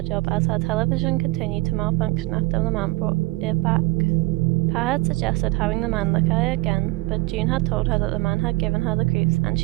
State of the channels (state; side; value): quieter; left; 21.9 dB